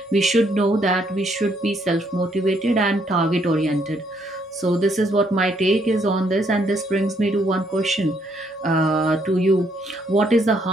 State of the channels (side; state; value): both; normal; correlation 0.71